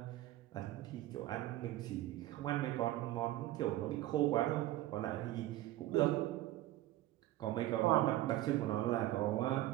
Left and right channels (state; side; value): quieter; left; 15.4 dB